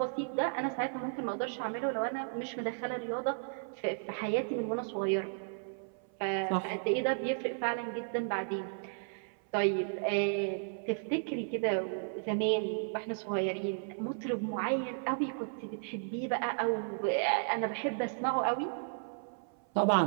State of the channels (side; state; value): left; silent; 55 dB below the other